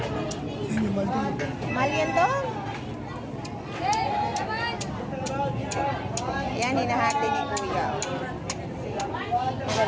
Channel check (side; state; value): both; identical; correlation 1.00